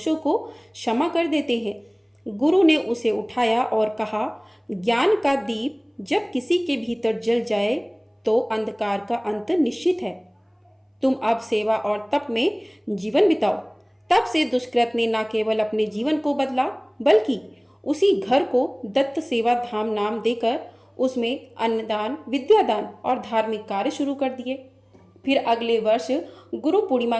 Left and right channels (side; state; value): both; identical; correlation 1.00